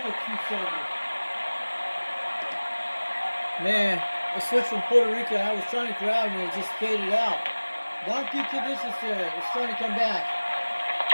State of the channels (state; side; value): inverted; both; correlation -1.00